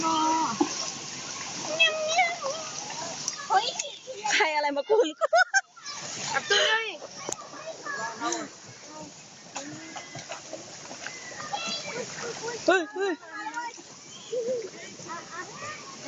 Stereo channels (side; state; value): both; identical; correlation 1.00